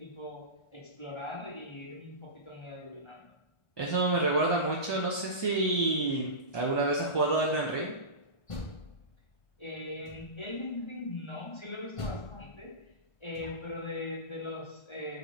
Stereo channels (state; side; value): late; right; 1.2 ms